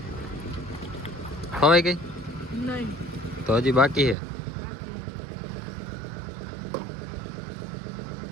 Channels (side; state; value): left; drops out; at 4.2 s